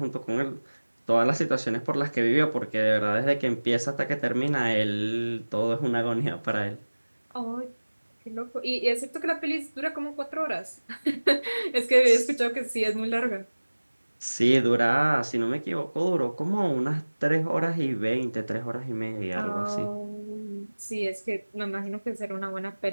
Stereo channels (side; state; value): both; inverted; correlation -1.00